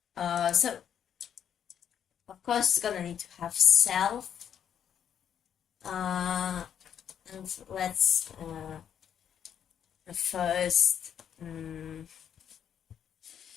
So of course it's gonna need to have self. And let's first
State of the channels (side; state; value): right; quieter; 8.9 dB